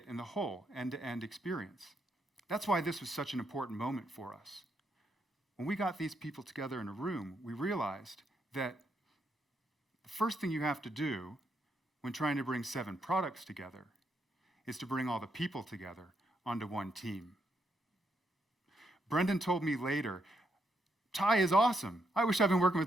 in the whole end-to-end experience. That's why this was such an important moment for us. When we got these people together in a room, we realized that the first thing you have to do when trying to bring 7 products together is to bring all the people together onto one team. Brendan told me later, Ty is awesome. I wish I've been working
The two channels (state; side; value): normal; both; correlation 0.78